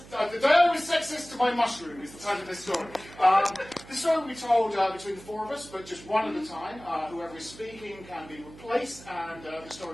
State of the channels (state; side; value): noise; right; hum, 19 dB below the sound